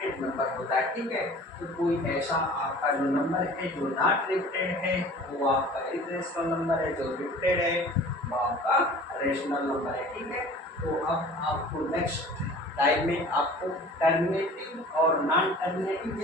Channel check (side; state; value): both; normal; correlation 0.45